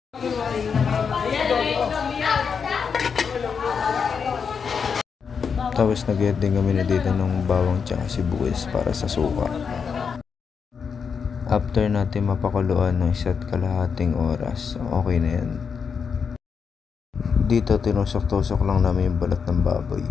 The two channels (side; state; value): right; quieter; 6.2 dB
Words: Tapos nag-add din kami na dito ng bawang tsaka sibuyas para sa suka. After natin mapakuluan ng 1.5 oras, okay na yan. Dito tinusok-tusok lang namin yung balat ng baboy.